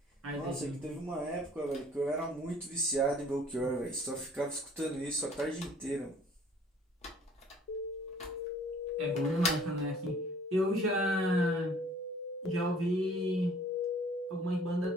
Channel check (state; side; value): normal; both; correlation 0.54